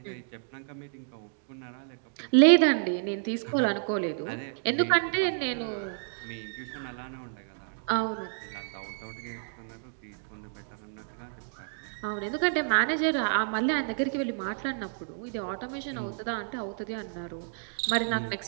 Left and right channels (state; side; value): silent; left; digital silence